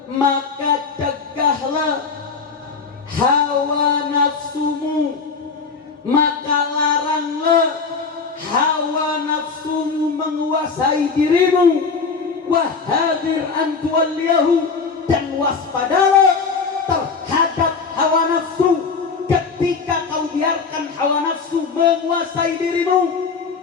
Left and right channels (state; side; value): quieter; right; 5.0 dB